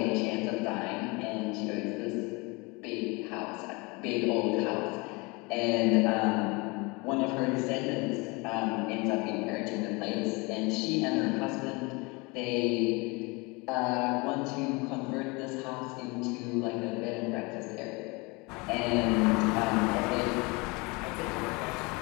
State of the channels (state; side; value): quieter; right; 27.1 dB